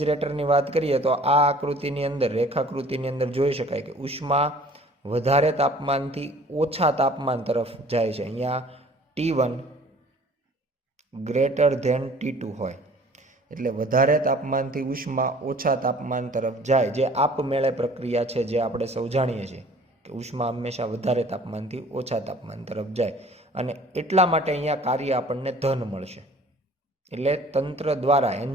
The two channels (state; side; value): normal; both; correlation 0.50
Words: વાત કરીએ તો આ આકૃતિની અંદર, રેખાકૃતિની અંદર જોઈ શકાય કે ઉષ્મા વધારે તાપમાનથી ઓછા તાપમાન તરફ જાય છે. અહીંયા T1 ગ્રેટર ધેન T2 હોય એટલે વધારે તાપમાનથી ઉષ્મા ઓછા તાપમાન તરફ જાય, જે આપમેળે પ્રક્રિયા છે જે આપણે સૌ જાણીએ છીએ કે ઉષ્મા હંમેશા વધારે તાપમાનથી ઓછા તાપમાન તરફ જાય. અને એટલા માટે અહીંયા કાર્ય આપણને ધન મળશે, એટલે તંત્ર દ્વારા,